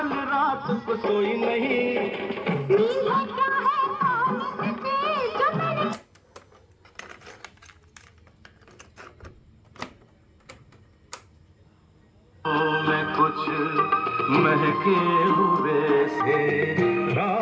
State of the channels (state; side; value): identical; both; correlation 1.00